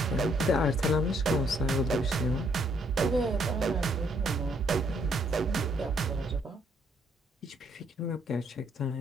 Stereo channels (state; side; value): normal; both; correlation 0.69